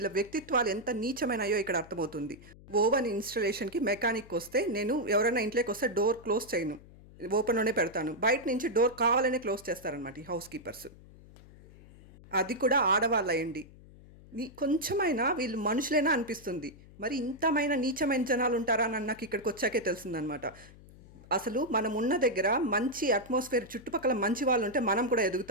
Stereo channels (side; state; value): left; noise; hum, 21 dB below the sound